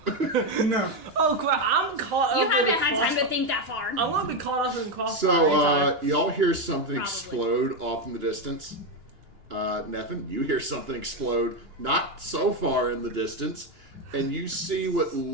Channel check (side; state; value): left; late; 2.9 ms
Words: No. Oh crap! I'm caught. You up haven't in had time to crossfire. think that far. I want to be caught up in crossfire. So, y'all hear something Probably. explode off in the distance. Nefan, you hear something explode not so far in the distance, and you see what